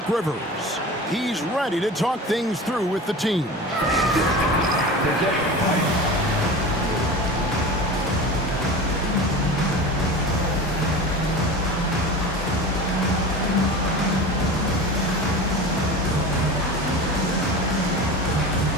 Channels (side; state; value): both; normal; correlation 0.32